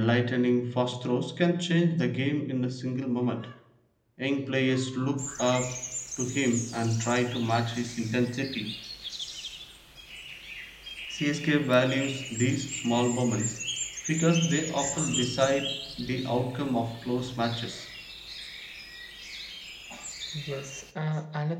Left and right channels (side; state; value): both; identical; correlation 1.00